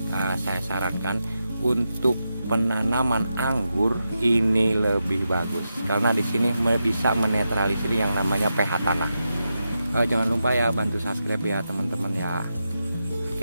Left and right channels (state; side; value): inverted; both; correlation -0.88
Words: saya sarankan untuk penanaman anggur ini lebih bagus karena di sini bisa menetralisir yang namanya pH tanah. Jangan lupa ya bantu subscribe ya teman-teman ya.